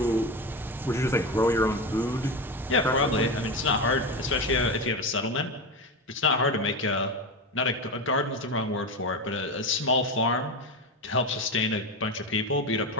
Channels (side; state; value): both; normal; correlation 0.19